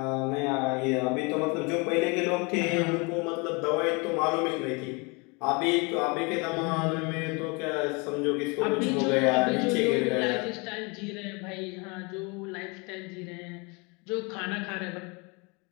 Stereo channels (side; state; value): right; quieter; 30.0 dB